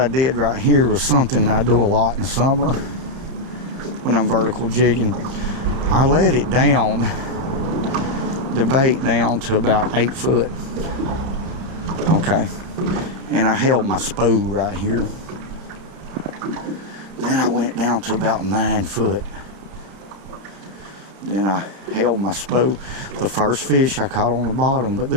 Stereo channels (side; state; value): left; late; 30 ms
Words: did right here was something I do a lot in the summer when I'm vertical jigging. I let it down, the bait down to about 8 foot. Okay, and I held my spool right here. Then I went down to about 9 foot. Then I held my spool. The first fish I caught on the bottom, but